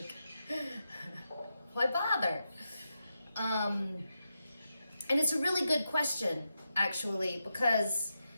Why bother? And it's a really good question, actually, because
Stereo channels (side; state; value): both; inverted; correlation -0.87